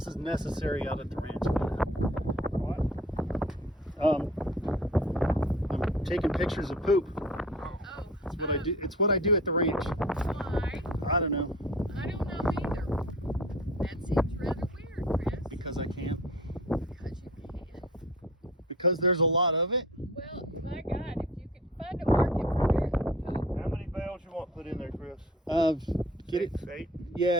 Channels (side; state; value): both; normal; correlation 0.43